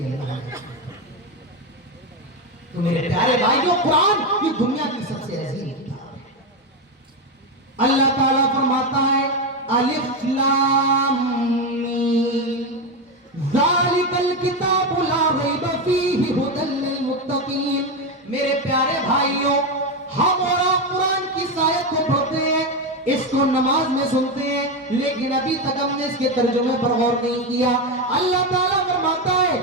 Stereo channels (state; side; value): normal; both; correlation 0.12